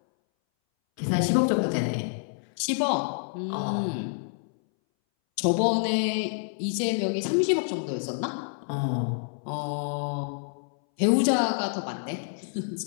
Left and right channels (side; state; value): right; silent; 60 dB below the other